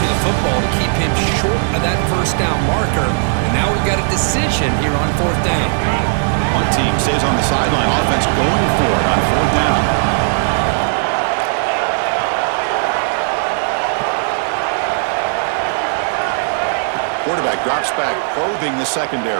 the football to keep him short of that 1st down marker. And now we've got a decision here on 4th down. One team stays on the sideline. Offense going for it on 4th down. Quarterback drops back, probing the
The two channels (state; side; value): silent; left; digital silence